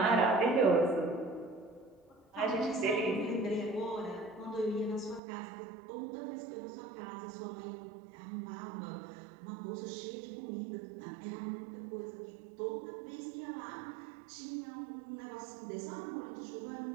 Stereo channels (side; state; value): left; drops out; at 5.2 s